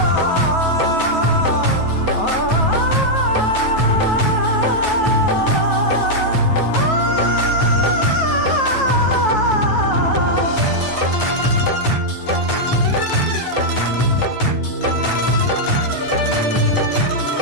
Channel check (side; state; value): right; late; 9.3 ms